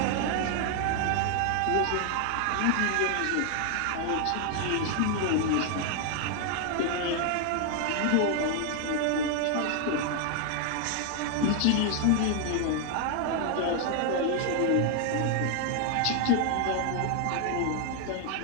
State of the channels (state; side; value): different; both; correlation 0.00